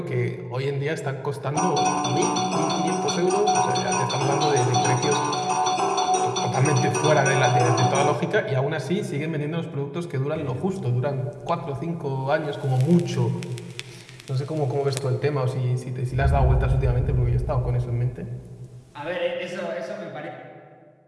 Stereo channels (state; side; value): identical; both; correlation 1.00